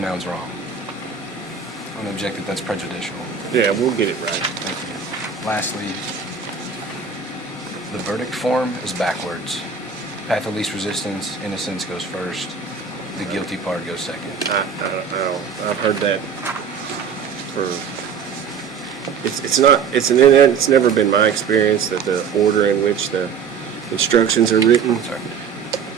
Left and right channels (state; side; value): quieter; left; 6.3 dB